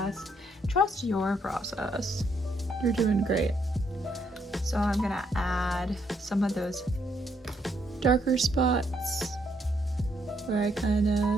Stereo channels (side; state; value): both; normal; correlation 0.73